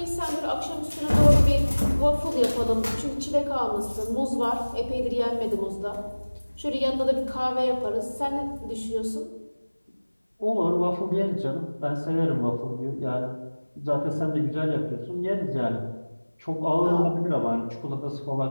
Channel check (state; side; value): inverted; both; correlation -1.00